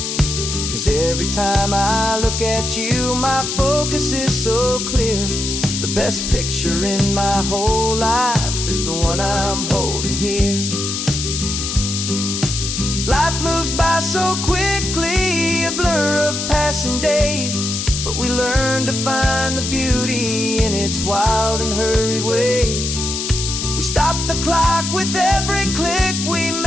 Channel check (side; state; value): left; noise; hiss, 3 dB below the sound